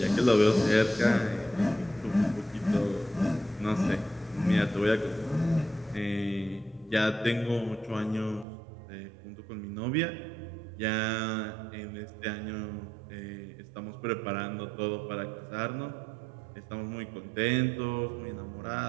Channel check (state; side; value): drops out; left; at 8.5 s